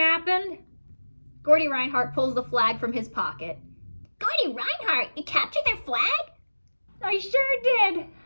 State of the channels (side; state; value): both; inverted; correlation -1.00